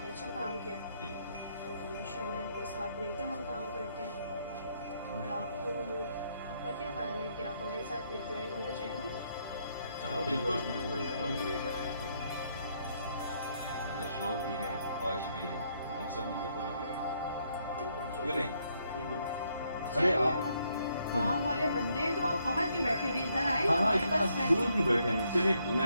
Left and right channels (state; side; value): inverted; both; correlation -0.73